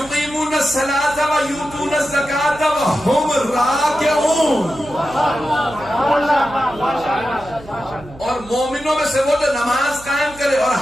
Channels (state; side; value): noise; right; hum, 19 dB below the sound